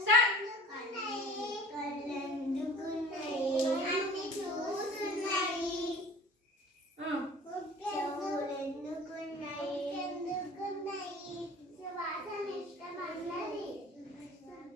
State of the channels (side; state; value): both; normal; correlation 0.44